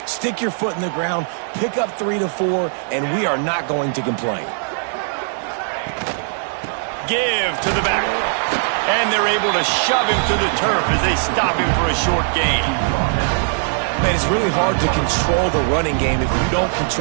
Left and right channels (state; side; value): silent; left; 66 dB below the other